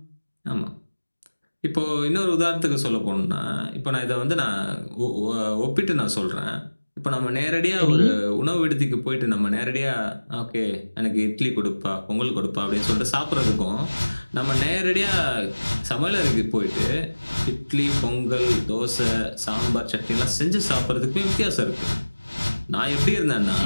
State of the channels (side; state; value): both; inverted; correlation -1.00